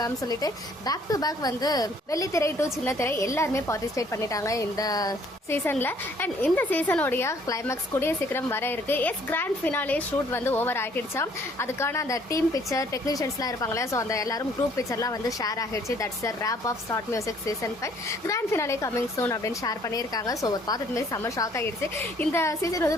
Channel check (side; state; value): both; normal; correlation 0.61